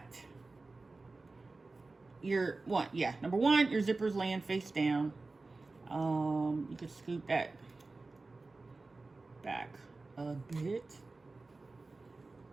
number one, your zipper's laying face down. You could scoot that back a bit.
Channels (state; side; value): quieter; left; 3.5 dB